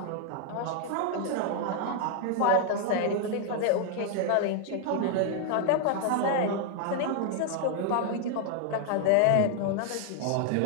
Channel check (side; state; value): both; different; correlation 0.00